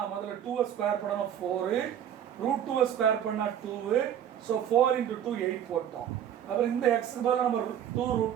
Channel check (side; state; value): left; quieter; 9.7 dB